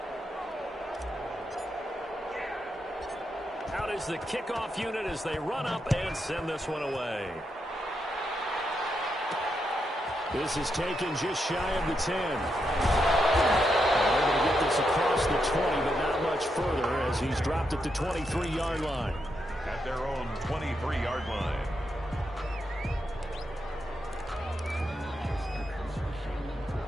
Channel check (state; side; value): normal; both; correlation 0.83